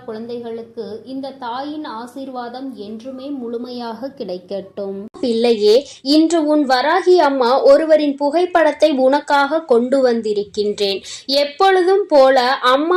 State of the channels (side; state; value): both; identical; correlation 1.00